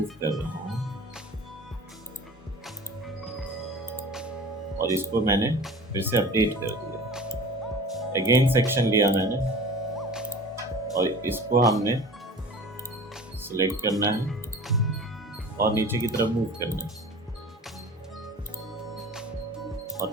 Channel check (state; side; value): normal; both; correlation 0.40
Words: कर रहा हूँ और इसको मैंने फिर से अपडेट कर दिया। अगेन सेक्शन लिया मैंने और इसको हमने सिलेक्ट करना है और नीचे की तरफ मूव करना है